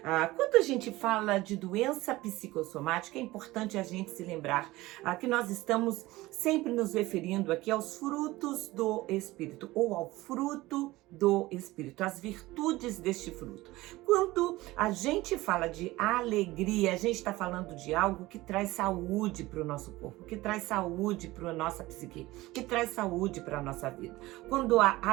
Quando a gente fala de doença psicossomática, é importante a gente se lembrar que nós estamos sempre nos referindo aqui aos frutos do Espírito, ou ao fruto do Espírito, as virtudes deste fruto. Quando a gente fala de alegria, a gente está falando de algo que traz saúde para o nosso corpo, que traz saúde para a nossa psique, que traz saúde para a nossa vida. Quando a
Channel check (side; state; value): left; quieter; 18.9 dB